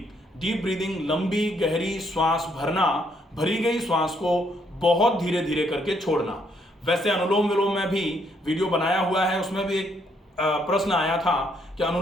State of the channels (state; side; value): normal; both; correlation 0.71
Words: डीप ब्रीदिंग, लंबी गहरी श्वास भरना, भरी गई श्वास को बहुत धीरे धीरे करके छोड़ना। वैसे अनुलोम विलोम में भी वीडियो बनाया हुआ है, उसमें भी एक प्रश्न आया था कि